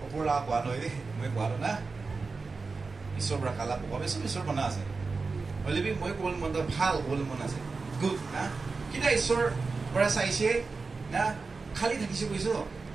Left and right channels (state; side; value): quieter; left; 4.2 dB